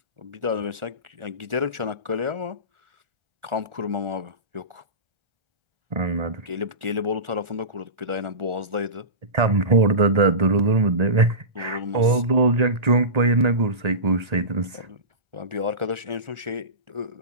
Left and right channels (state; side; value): late; left; 1.4 ms